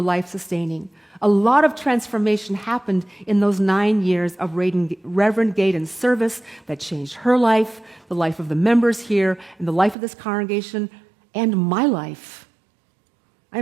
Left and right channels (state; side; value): drops out; left; at 10.0 s